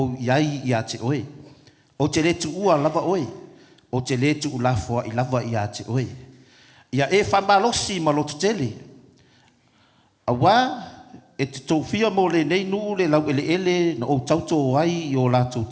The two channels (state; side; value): identical; both; correlation 1.00